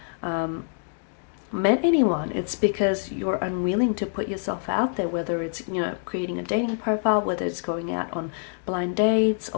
met anyone. It's because you're unwilling to put yourself out there, whether it's, you know, creating a dating profile, whether it's going out on blind dates,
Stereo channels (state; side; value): silent; right; digital silence